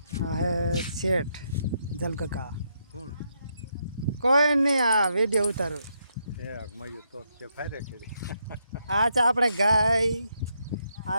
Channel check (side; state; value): both; inverted; correlation -0.79